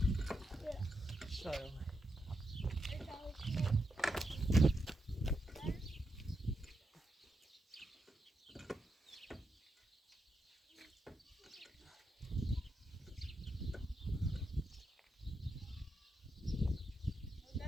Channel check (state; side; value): normal; both; correlation 0.84